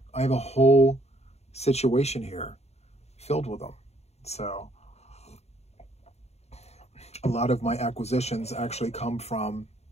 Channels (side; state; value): right; late; 0.31 ms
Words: I have a whole situation here filled with them. So a lot of my acquisitions actually come from